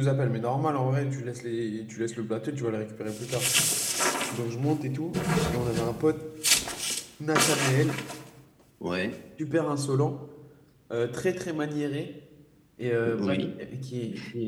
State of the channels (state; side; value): identical; both; correlation 1.00